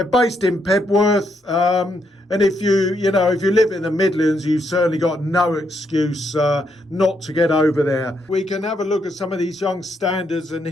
based in Pebworth, and if you live in the Midlands, you've certainly got no excuse not to get over there. We can have a look at some of these young standards, and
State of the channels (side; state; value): both; normal; correlation 0.77